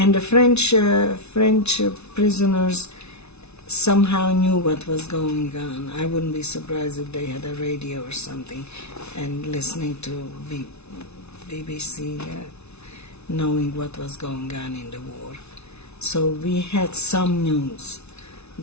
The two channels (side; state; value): right; late; 0.81 ms